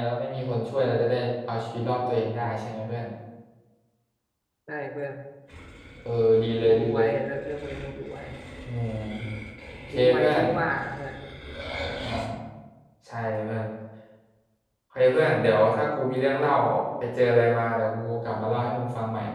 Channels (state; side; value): identical; both; correlation 1.00